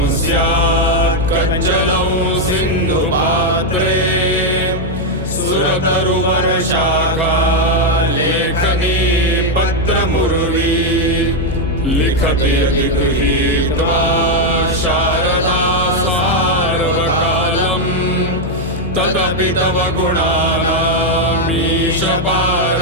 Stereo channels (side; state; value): left; noise; hum, 6 dB below the sound